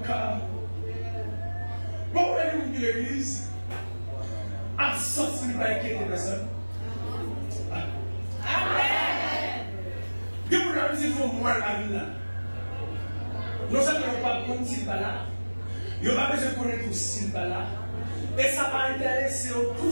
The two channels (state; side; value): inverted; both; correlation -1.00